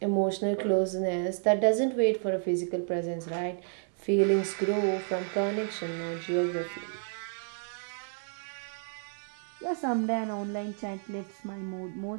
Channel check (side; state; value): left; silent; 57 dB below the other